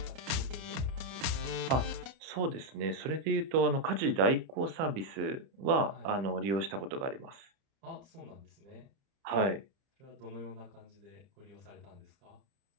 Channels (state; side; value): late; left; 30 ms